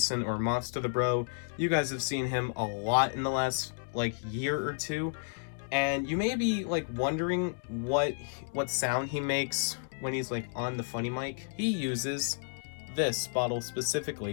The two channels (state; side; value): silent; right; digital silence